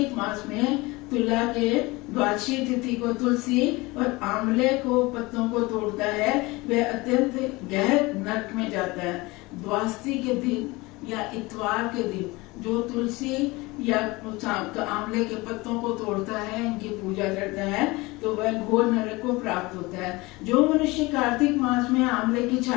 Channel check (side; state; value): right; quieter; 22.7 dB